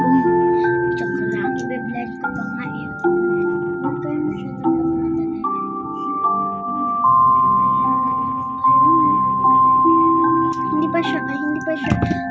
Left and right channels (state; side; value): identical; both; correlation 1.00